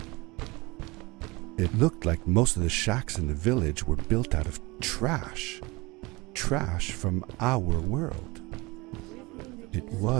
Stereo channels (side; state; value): left; quieter; 24.1 dB